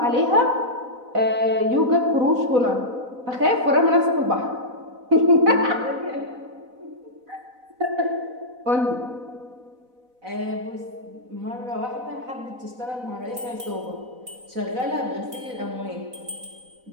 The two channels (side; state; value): left; late; 4.0 ms